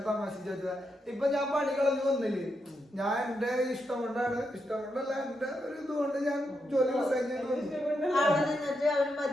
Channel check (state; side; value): normal; both; correlation 0.83